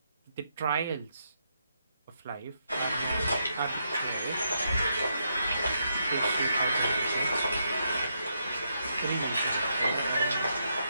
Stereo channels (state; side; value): inverted; both; correlation -0.80